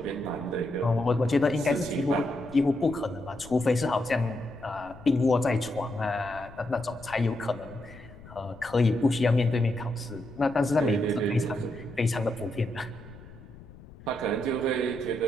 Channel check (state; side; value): noise; left; rumble, 19 dB below the sound